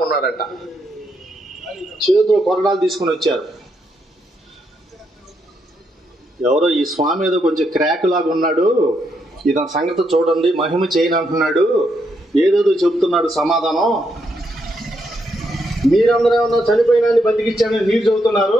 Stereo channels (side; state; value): both; normal; correlation 0.78